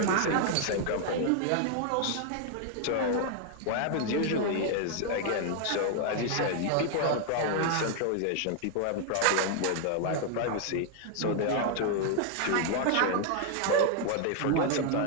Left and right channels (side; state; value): both; different; correlation 0.00